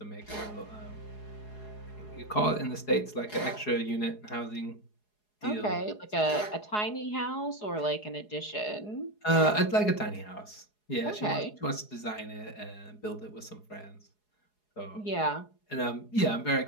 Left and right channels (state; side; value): late; right; 4.8 ms